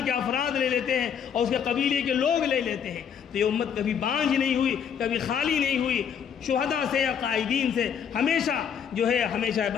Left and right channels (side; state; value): right; quieter; 7.8 dB